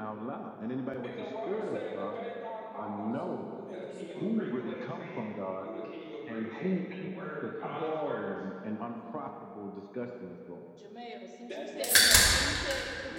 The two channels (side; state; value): both; identical; correlation 1.00